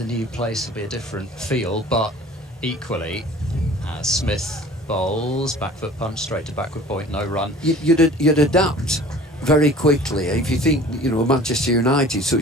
new place? Will be a different feel, but equally, Smith bowls, back foot punch, straight to backward point, no run. You'd adapt very quickly. If you think, you know, Manchester United,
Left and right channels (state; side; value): normal; both; correlation 0.45